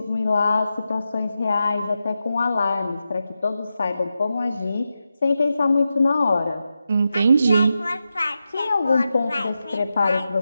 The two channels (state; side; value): inverted; both; correlation -0.89